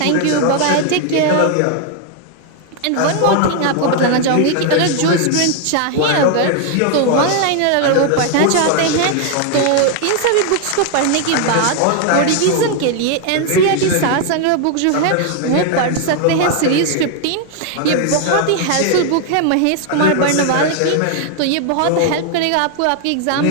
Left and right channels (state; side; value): different; both; correlation 0.00